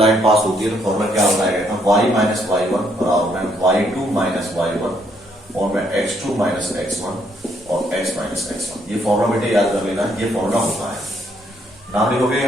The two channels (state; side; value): normal; both; correlation 0.71